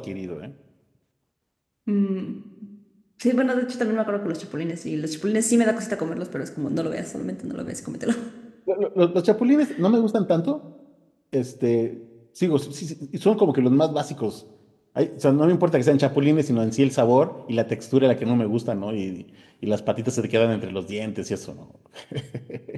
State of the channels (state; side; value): identical; both; correlation 1.00